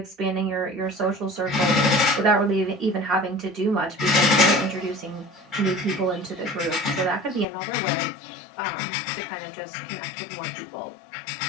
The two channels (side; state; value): right; drops out; at 7.5 s